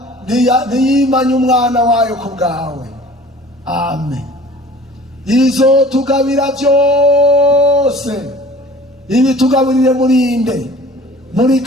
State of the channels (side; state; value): both; normal; correlation 0.46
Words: ntiyimanya umwana wayo ku bwawe. Amen. Izotugabira byose, ibitugaburire murinde muri